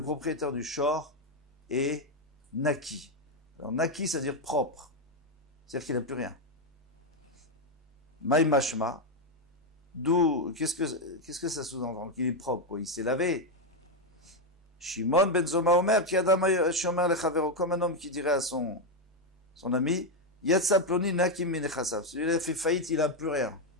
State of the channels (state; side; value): normal; both; correlation 0.05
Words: propriétaire du shor est naki. Alors naki, ça veut dire propre. C'est-à-dire qu'il n'a plus rien. Maï mashma, d'où, qu'est-ce que ça sous-entend? Qu'il est propre, quoi. Il s'est lavé. Shimon ben Zoma Omer, comme un homme qui dirait à son ami, Yatsa ploni nakim minechasav. Celui-là fait faillite, il n'a plus rien.